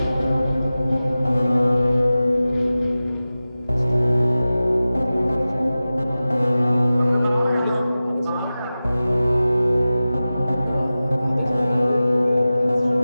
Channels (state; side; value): inverted; both; correlation -0.96